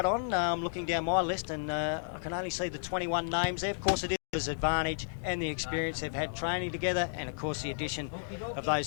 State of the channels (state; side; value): silent; right; digital silence